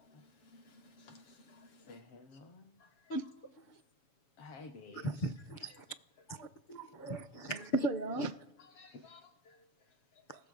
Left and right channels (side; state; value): right; late; 7.2 ms